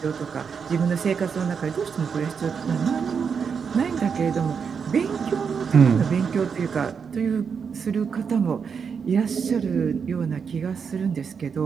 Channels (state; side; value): quieter; left; 6.3 dB